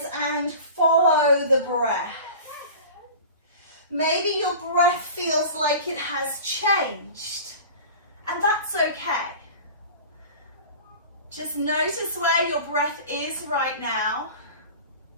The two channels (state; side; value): inverted; both; correlation -0.38